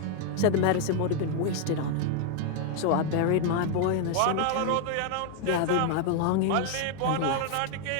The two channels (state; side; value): different; both; correlation 0.00